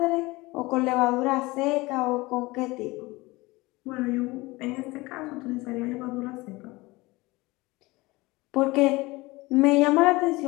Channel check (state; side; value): quieter; right; 21.8 dB